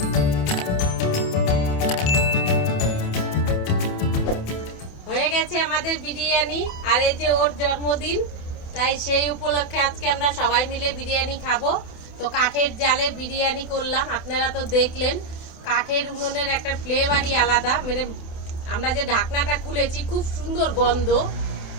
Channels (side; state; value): right; late; 28 ms